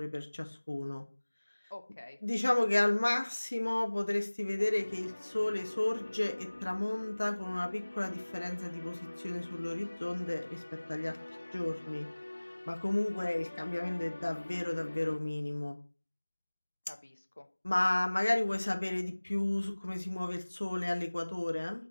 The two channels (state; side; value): inverted; both; correlation -1.00